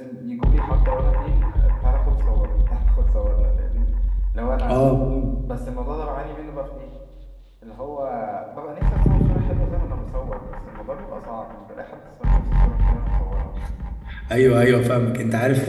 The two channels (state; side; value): identical; both; correlation 1.00